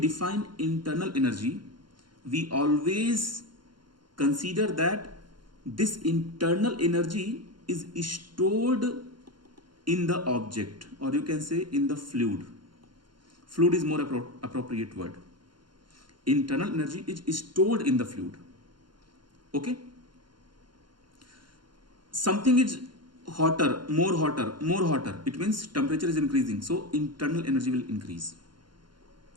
internal energy, we always consider that this internal energy is stored in the object, or you can say in the fluid. Fluid is more appropriate word. Internal energy is stored in the fluid. Okay? Something is hotter, more hotter. It means temperature is increasing. So internal energy will increase.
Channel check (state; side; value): late; left; 0.72 ms